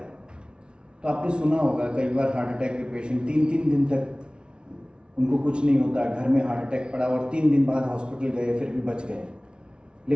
तो आपने सुना होगा कई बार हार्ट अटैक के पेशेंट 3-3 दिन तक उनको कुछ नहीं होता, घर में हार्ट अटैक पड़ा और 3 दिन बाद हॉस्पिटल गए फिर भी बच गए।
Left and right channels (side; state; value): left; late; 0.056 ms